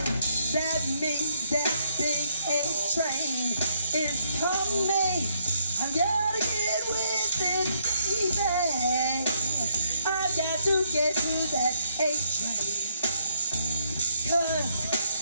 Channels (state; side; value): inverted; both; correlation -0.72